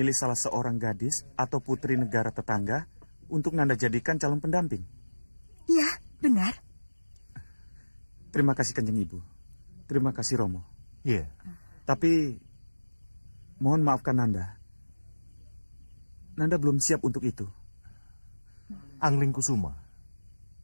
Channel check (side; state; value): both; inverted; correlation -1.00